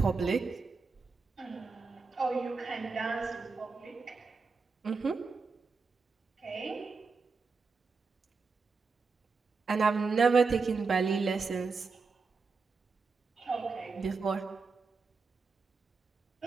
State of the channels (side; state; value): left; quieter; 4.5 dB